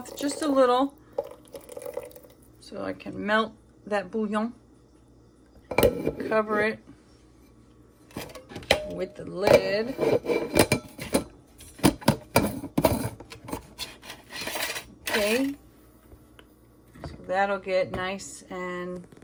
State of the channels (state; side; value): identical; both; correlation 1.00